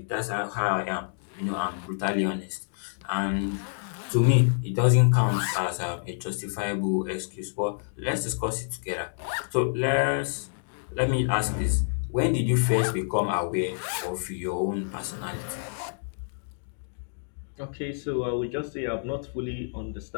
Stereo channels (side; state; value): right; silent; digital silence